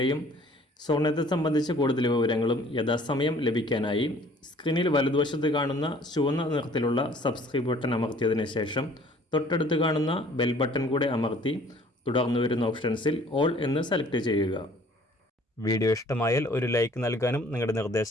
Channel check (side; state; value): both; normal; correlation 0.54